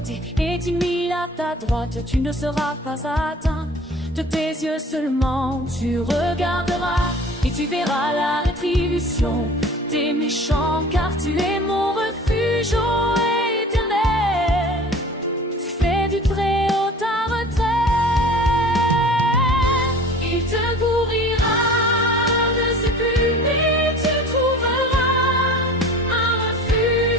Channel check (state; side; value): normal; both; correlation 0.43